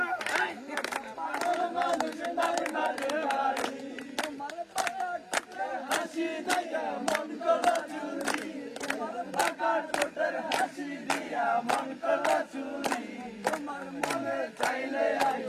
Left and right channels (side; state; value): both; identical; correlation 1.00